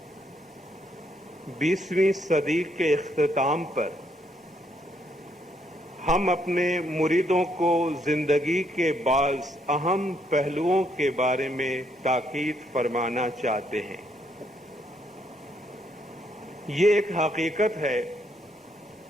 20ویں صدی کے اختتام پر ہم اپنے مریدوں کو زندگی کے بعض اہم پہلوؤں کے بارے میں تاکید فرمانا چاہتے ہیں۔ یہ ایک حقیقت ہے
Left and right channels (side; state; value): both; normal; correlation 0.73